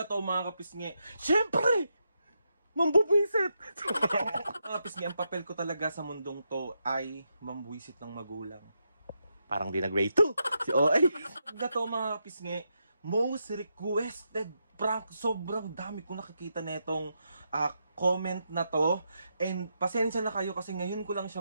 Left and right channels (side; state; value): both; inverted; correlation -0.83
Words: to mga kapisngi, syempre, mambubuisit! Mga kapisngi, ang papel ko talaga sa mundong to ay mambuisit ng magulang. Parang di nag-grade 2. Si OA. Na to mga kapisngi, most requested prank. Sobrang dami kong nakikita na itong comment na to. And pasensya na kayo kasi ngayon ko lang